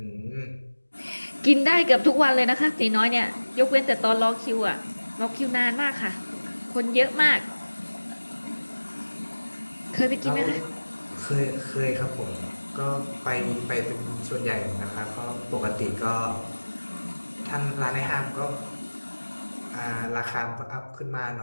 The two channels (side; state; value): both; inverted; correlation -1.00